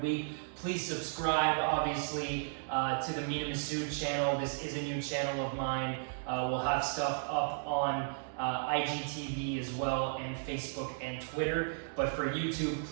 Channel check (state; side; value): silent; left; digital silence